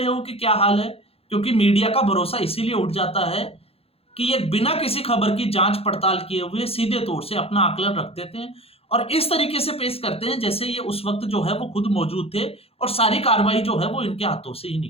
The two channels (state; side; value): late; right; 0.28 ms